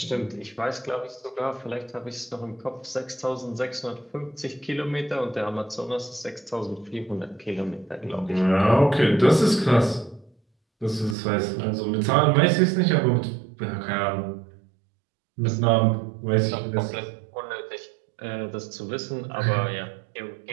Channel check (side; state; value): left; drops out; at 11.2 s